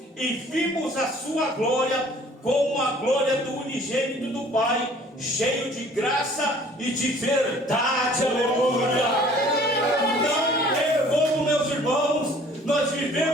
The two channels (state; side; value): normal; both; correlation 0.53